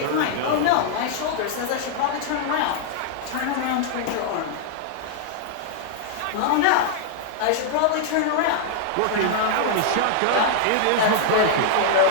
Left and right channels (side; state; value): both; different; correlation -0.01